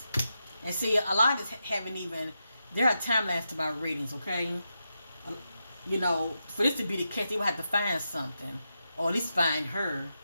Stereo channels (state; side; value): inverted; both; correlation -0.87